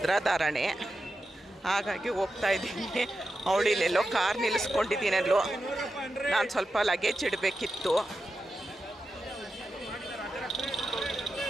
ಹಾಗಾಗಿ ಹೋಗ್ತಾ ಇದ್ದೀನಿ. ಅವಳು ಇಲ್ಲೆಲ್ಲೋ ಕಾರ್ ನಿಲ್ಲಿಸ್ಕೊಂಡಿದ್ದೀನಲ್ಲೋ. ನಾನು ಸ್ವಲ್ಪ ಲಗೇಜ್ ಇಡಬೇಕಿತ್ತು.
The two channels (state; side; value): normal; both; correlation 0.90